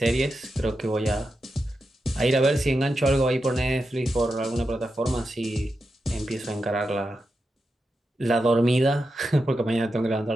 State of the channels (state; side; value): normal; both; correlation 0.88